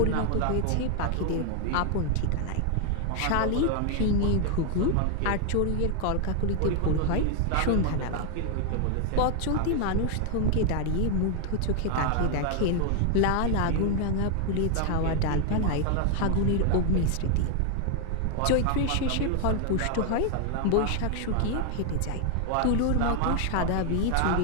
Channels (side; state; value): both; different; correlation 0.00